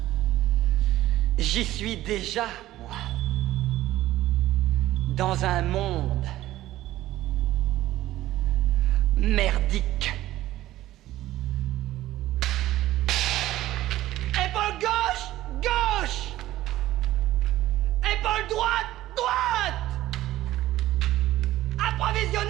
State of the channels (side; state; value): left; quieter; 15.1 dB